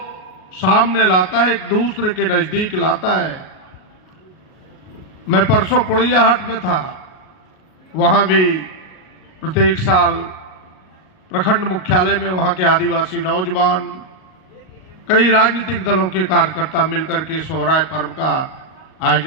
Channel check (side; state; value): right; late; 38 ms